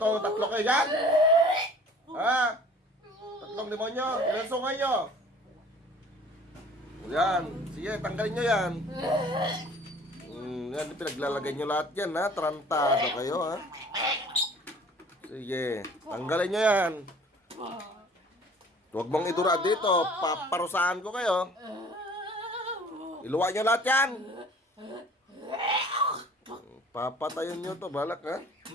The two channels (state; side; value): normal; both; correlation 0.50